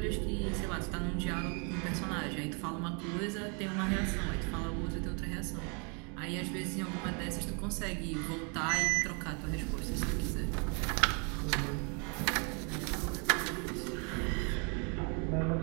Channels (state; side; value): quieter; left; 35.9 dB